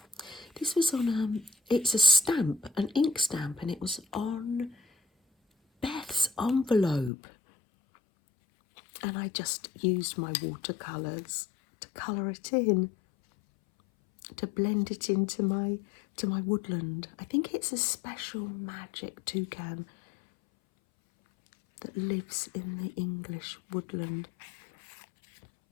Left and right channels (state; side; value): drops out; right; at 7.1 s